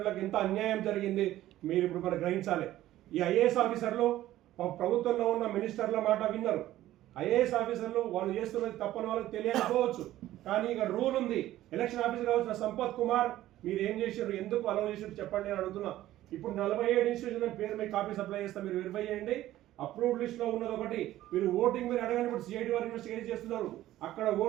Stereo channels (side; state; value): left; quieter; 14.4 dB